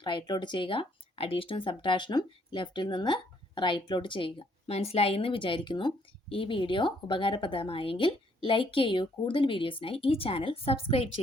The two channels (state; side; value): normal; both; correlation 0.68